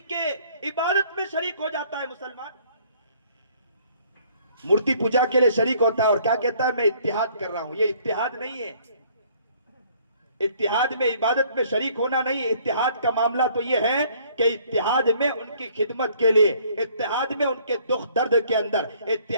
کے عبادت میں شریک ہو جاتا ہے مسلمان، مورتی پوجا کے لیے شریک ہوتا ہے اور کیا کہتا ہے میں اتحاد کر رہا ہوں۔ یہ اتحاد نہیں ہے، اتحاد میں عبادت میں شریک ہونا نہیں، اتحاد کا معاملہ تو یہ ہے کہ اتحاد میں ان کی خدمت کے لیے، اتحاد میں ان کے دکھ درد کے اندر،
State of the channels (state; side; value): inverted; both; correlation -0.60